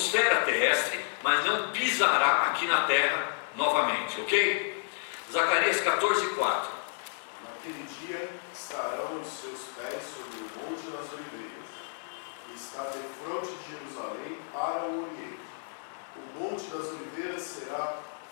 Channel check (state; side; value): silent; right; digital silence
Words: terrestre, mas não pisará aqui na terra novamente, ok? Zacarias 14:4. Naquele dia estarão os seus pés sobre o Monte das Oliveiras, que está defronte de Jerusalém para o Oriente. O Monte das Oliveiras será